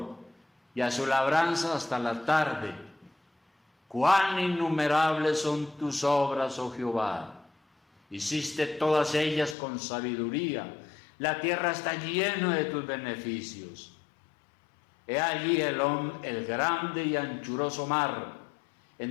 y a su labranza hasta la tarde. Cuán innumerables son tus obras, oh Jehová. Hiciste todas ellas con sabiduría. La tierra está llena de tus beneficios. He allí el grande y anchuroso mar,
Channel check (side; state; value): right; drops out; at 9.6 s